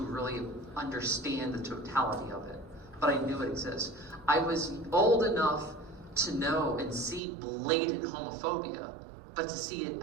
understand the totality of it. But I knew it exists. I was old enough to know and see blatant homophobia, but to see it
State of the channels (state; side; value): drops out; left; at 7.2 s